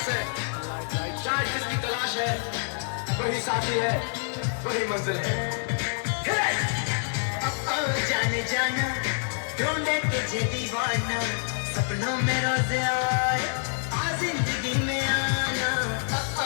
से। चाहे जिसकी तलाश है वही साथी है, वही मंजिल है। जाने जाना ढूंढे तुझे दीवाना, सपनों में रोज आए आ जिंदगी में आना।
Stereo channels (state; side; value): silent; right; digital silence